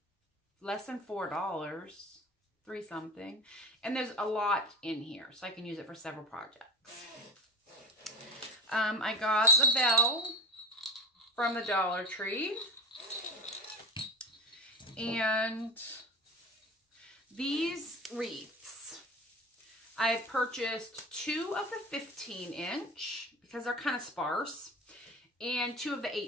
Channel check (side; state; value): both; normal; correlation 0.29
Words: less than $4. 3 something, and there's a lot in here, so I can use it for several projects. I got the bell from the Dollar Tree, and these wreaths. I purchased 2 of the 15-inch because they're kind of sparse, and 2 of the